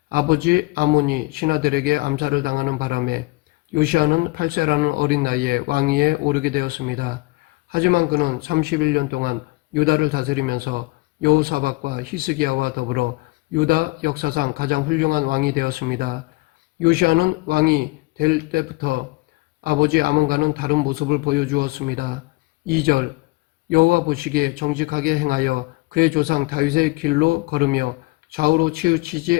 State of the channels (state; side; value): quieter; right; 23.8 dB